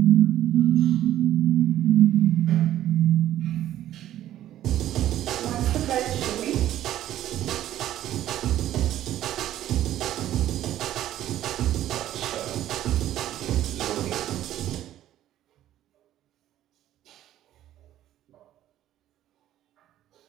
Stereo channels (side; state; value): left; quieter; 12.7 dB